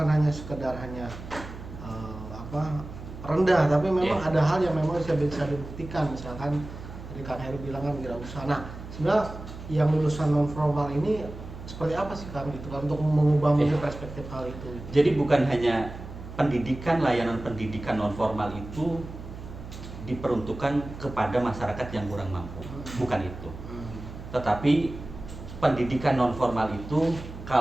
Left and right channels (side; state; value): right; noise; hum, 12 dB below the sound